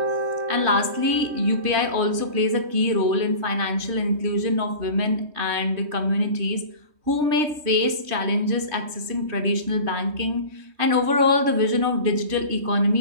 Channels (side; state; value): left; late; 3.2 ms